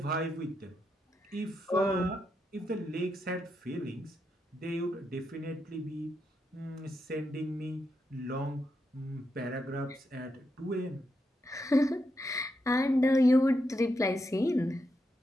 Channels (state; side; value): normal; both; correlation 0.83